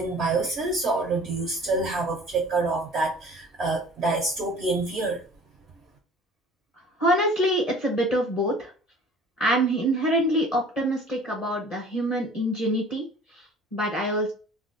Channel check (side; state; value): both; normal; correlation 0.47